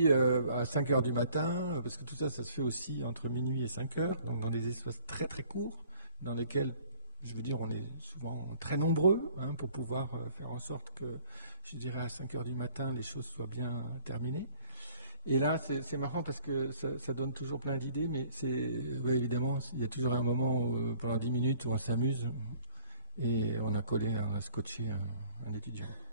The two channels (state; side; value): inverted; both; correlation -0.55